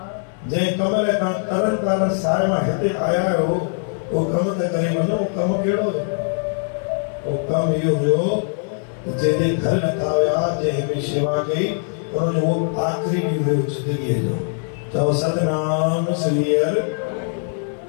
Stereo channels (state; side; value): silent; right; digital silence